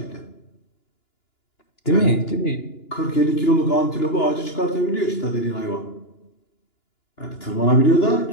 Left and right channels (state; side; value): late; right; 2.9 ms